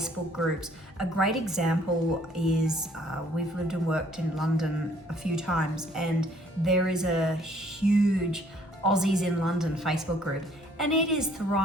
groups. A great example is we've lived and worked in London a few times, and there is a huge Aussies in London Facebook group, and it is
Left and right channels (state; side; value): normal; both; correlation 0.61